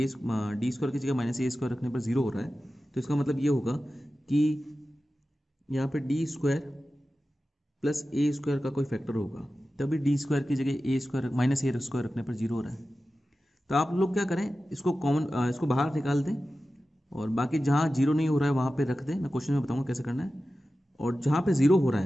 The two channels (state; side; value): normal; both; correlation 0.94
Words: डी स्क्वायर की जगह माइनस ए स्क्वायर रखने पर जीरो हो रहा है, तो इसका मतलब ये होगा कि यहाँ पे D square plus a square का कोई फैक्टर होगा, तभी डी स्क्वायर की जगह ए स्क्वायर माइनस ए स्क्वायर रखने पर जीरो हो रहा है। तो आप लोग क्या करें, इसको बाहर निकाल दें और बाकी जहाँ जीरो नहीं हो रहा है वहाँ पे रख दें। मैं क्वेश्चन में बताऊँगा कैसे करना है। और जहाँ पे जीरो हो रहा